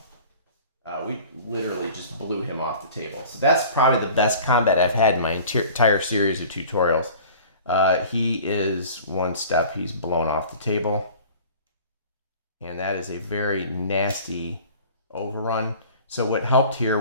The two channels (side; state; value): both; inverted; correlation -0.44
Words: we literally just blew him off the table. So that's probably the best combat I've had in my entire series of tutorials. He is 1 step. He's blown off the table. And that is a very nasty overrun. So what helped